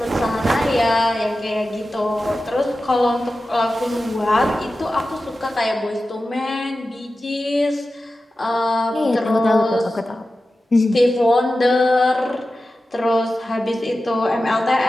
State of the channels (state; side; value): normal; both; correlation 0.93